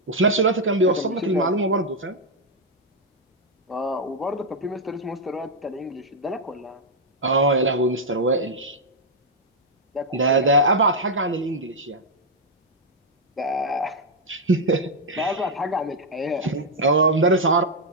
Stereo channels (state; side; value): normal; both; correlation -0.02